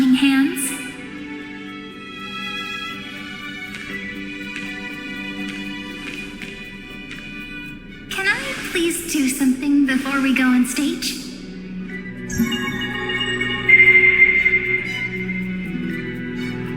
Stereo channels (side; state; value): both; identical; correlation 1.00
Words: hands, please do something before we go on stage?